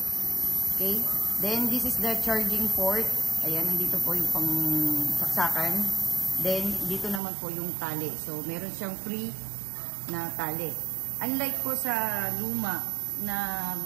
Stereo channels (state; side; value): drops out; left; at 7.2 s